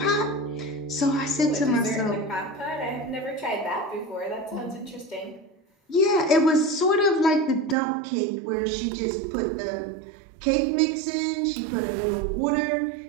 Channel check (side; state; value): left; drops out; at 7.8 s